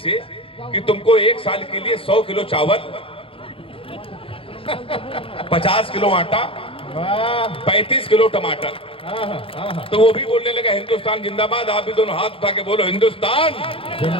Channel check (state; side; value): late; right; 0.26 ms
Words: कि तुमको 1 साल के लिए 100 किलो चावल, 50 किलो आटा, 35 किलो टमाटर। तो वो भी बोलने लगा हिंदुस्तान जिंदाबाद। आप भी दोनों हाथ उठा के बोलो हिंदुस्तान